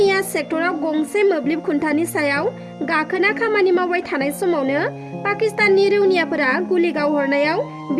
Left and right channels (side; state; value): both; identical; correlation 1.00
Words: सेक्टराव गंसे मोब्लिब खुन्थानि सायाव गाखोना खामानि मावबाय थानाय समावनो पाकिस्ताननि रौनियाफोरा गुलि गावहरनायाव